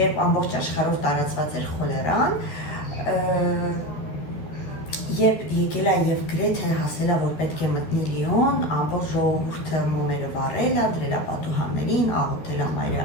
ամբողջ աշխարհով տարածված էր խոլերան, երբ եկել է եւ գրեթե հասել է, որ պետք է մտնի Լիոն, ամբողջ ժողովուրդը մոմերը վառել է, դրել է պատուհաններին, աղոթել է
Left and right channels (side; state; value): right; late; 13 ms